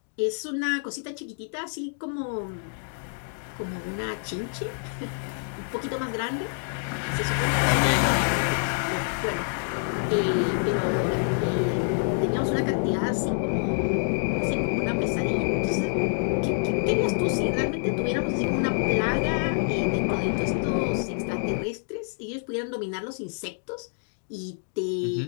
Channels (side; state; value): right; silent; digital silence